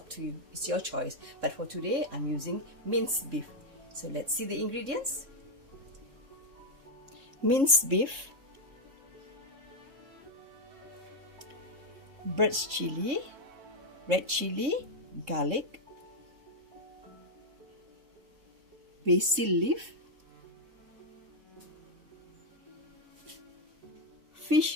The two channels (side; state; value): left; late; 3.6 ms